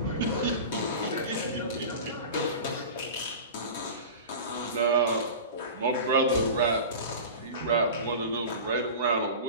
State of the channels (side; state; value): both; inverted; correlation -0.32